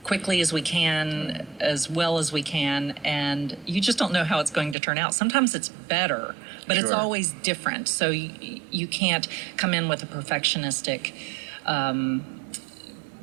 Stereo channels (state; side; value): drops out; left; at 4.8 s